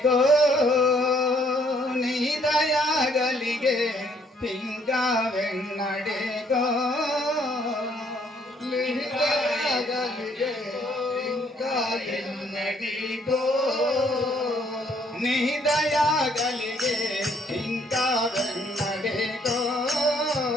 నీ దయాగలిగే ఇంకా వెన్నడేగో లిహితగలిగే ఇంకా ఎన్నటికో నీ దయాగలిగే ఇంకా వెన్నడేగో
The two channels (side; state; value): both; normal; correlation 0.66